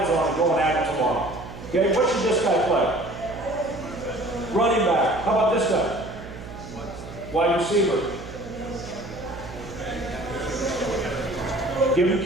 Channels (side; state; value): right; noise; hum, 13 dB below the sound